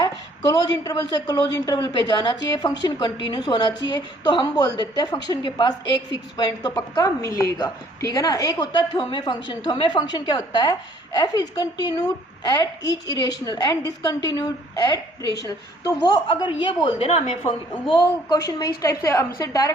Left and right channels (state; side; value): normal; both; correlation 0.60